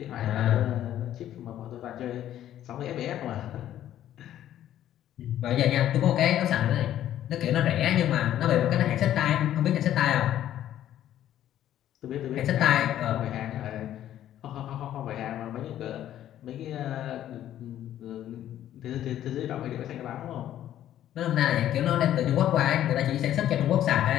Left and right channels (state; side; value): quieter; right; 11.9 dB